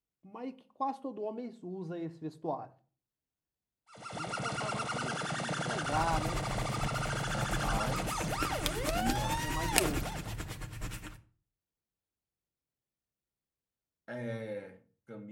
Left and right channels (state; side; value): identical; both; correlation 1.00